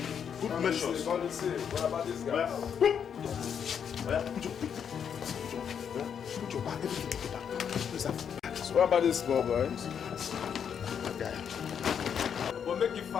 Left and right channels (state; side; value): quieter; right; 7.7 dB